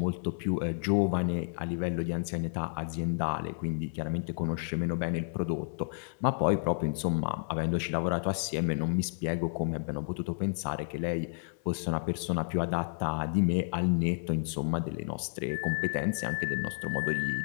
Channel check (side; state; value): right; silent; 57 dB below the other